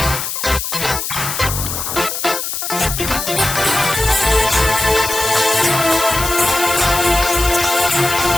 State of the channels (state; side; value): noise; left; hiss, 4 dB below the sound